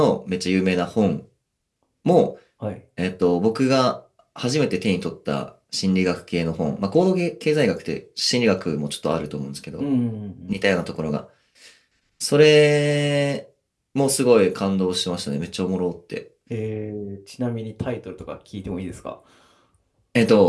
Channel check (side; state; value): both; identical; correlation 1.00